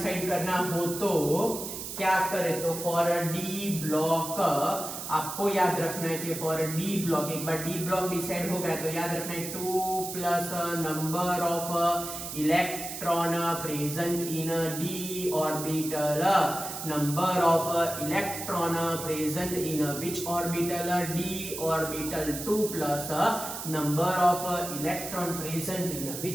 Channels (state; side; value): noise; right; hiss, 7 dB below the sound